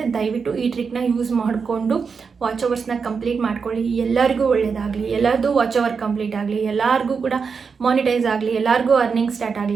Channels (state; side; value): quieter; left; 5.5 dB